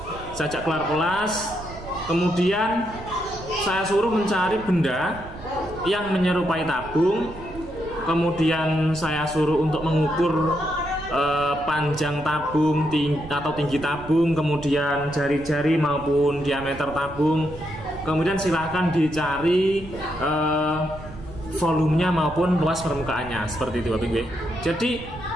saya ajak keluar kelas, kemudian saya suruh mencari benda yang menyerupai tabung, kemudian saya suruh untuk mengukur panjang tabung atau tinggi tabung, kemudian jari-jari maupun diameter tabung, kemudian silahkan dicari volumenya maupun luas permukaannya, seperti itu, Bapak Ibu. Jadi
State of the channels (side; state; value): right; noise; rumble, 15 dB below the sound